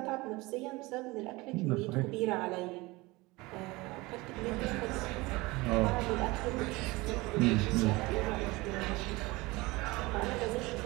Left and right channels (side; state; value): left; quieter; 22.3 dB